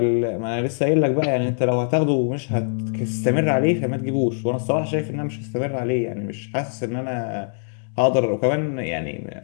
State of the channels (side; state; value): right; silent; digital silence